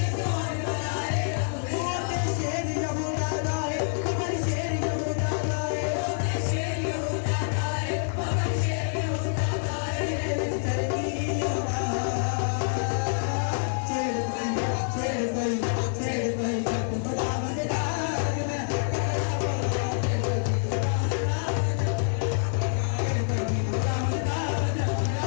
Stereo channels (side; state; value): right; silent; 56 dB below the other